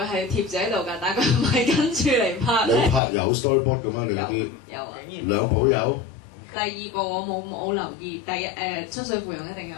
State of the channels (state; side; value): drops out; right; at 3.0 s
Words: 係貼住喺度㗎，但係佢唔係跟住嚟拍咧。你拍有 storyboard 嘅咩？你嗰啲有啊。兩部有。第二個我冇留意，第一出水芙蓉一定有